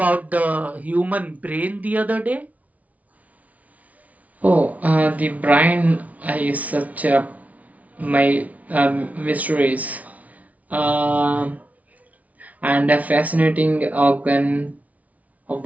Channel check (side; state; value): left; late; 0.070 ms